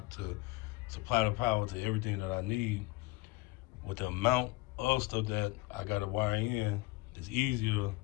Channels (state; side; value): quieter; right; 21.1 dB